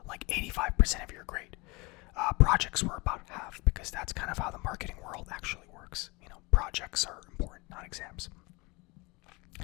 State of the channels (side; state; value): right; quieter; 25.5 dB